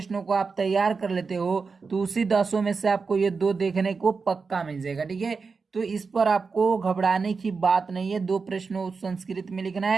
को आप तैयार कर लेते हो, तो उसी 10 में से आपको ये 2 देखने को पक्का मिल जाएगा। ठीक है, तो इस पर आपको घबराने की बात नहीं है, 2 प्रश्नों संस्कृत में लिखना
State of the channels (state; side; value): quieter; left; 4.8 dB